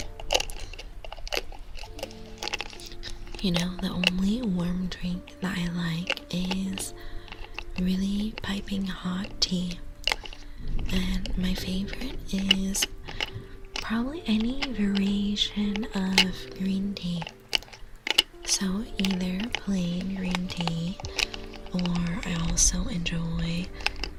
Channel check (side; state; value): both; identical; correlation 1.00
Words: You know, the only warm drink that I like is really piping hot tea. And my favorite is probably any variation of green tea. So either plain green tea, or I also enjoy